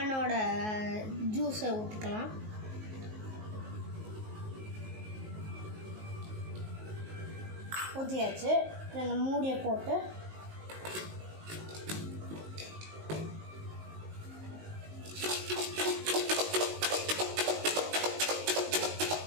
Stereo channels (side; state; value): left; late; 19 ms